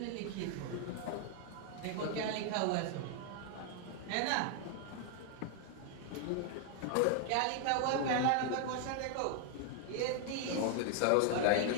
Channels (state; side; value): different; both; correlation 0.00